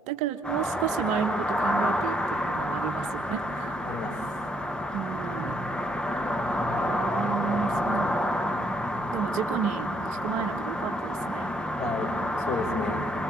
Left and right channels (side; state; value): both; normal; correlation 0.71